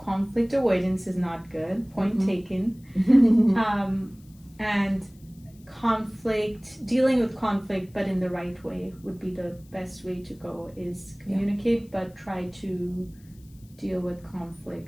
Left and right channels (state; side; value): noise; left; hiss, 29 dB below the sound